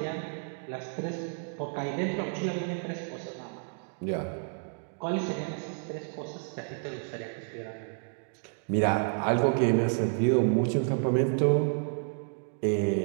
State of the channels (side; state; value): left; silent; 58 dB below the other